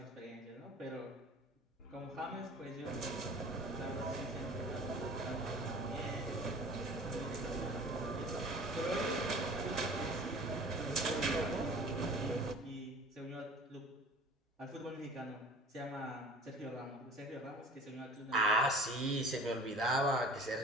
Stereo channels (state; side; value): normal; both; correlation 0.44